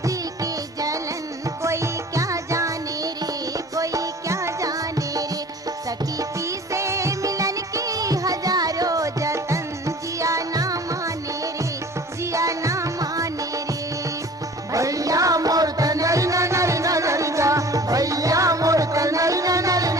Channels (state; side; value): normal; both; correlation 0.45